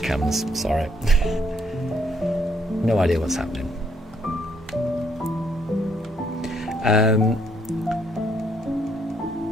Sorry. No idea what's happening.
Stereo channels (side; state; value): both; normal; correlation 0.70